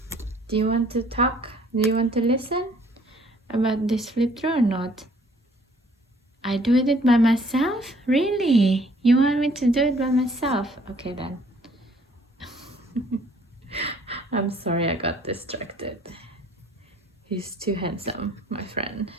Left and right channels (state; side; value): normal; both; correlation 0.59